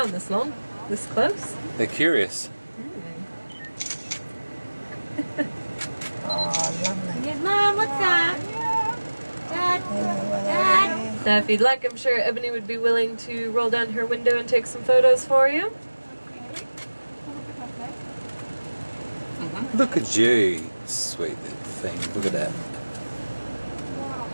this long, this close. They're curious. it. Oh, lovely. Yes, Mom, what's that? Dad. Now, if you'd like, I'm sure Ebony would be willing to roll down her window and take some photos for you. Look at you. Sweet little thing. Look at that.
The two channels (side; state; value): both; inverted; correlation -1.00